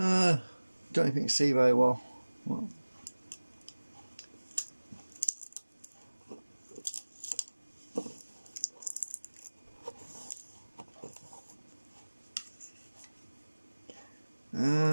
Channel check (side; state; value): both; inverted; correlation -1.00